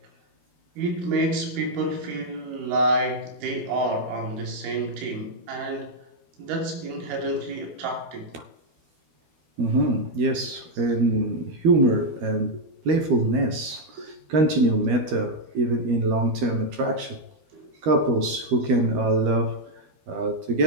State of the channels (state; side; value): late; left; 12 ms